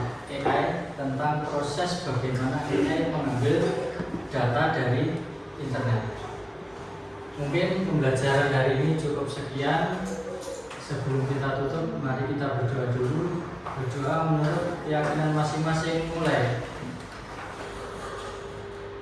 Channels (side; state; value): both; identical; correlation 1.00